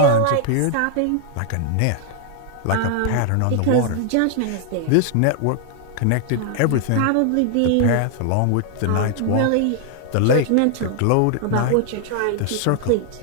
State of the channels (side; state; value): both; different; correlation 0.00